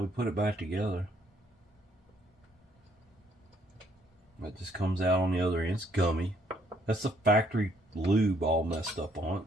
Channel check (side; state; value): both; normal; correlation 0.67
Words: we put it back together. That just comes out on the other end. It's gummy. That's the factory lube all messed up on it.